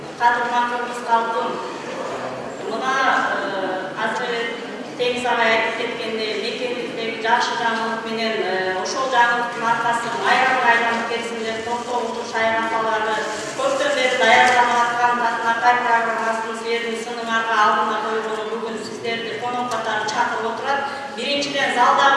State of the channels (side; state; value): both; identical; correlation 1.00